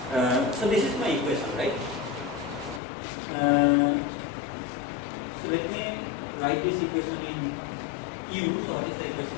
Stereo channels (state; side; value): drops out; right; at 2.8 s